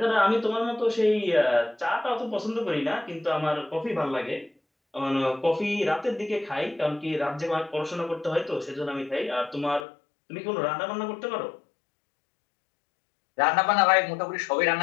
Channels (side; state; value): right; drops out; at 9.9 s